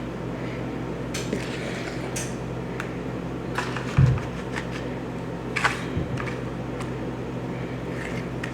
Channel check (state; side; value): identical; both; correlation 1.00